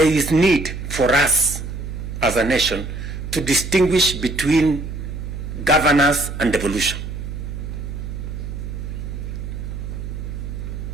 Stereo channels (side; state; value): right; noise; hum, 7 dB below the sound